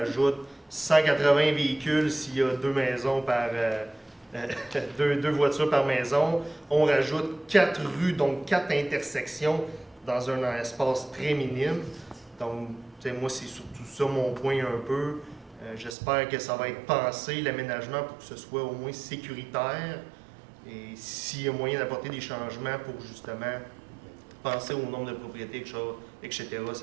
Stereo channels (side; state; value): left; drops out; at 16.0 s